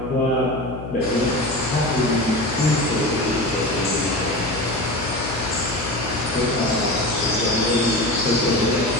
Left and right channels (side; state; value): left; noise; hum, 9 dB below the sound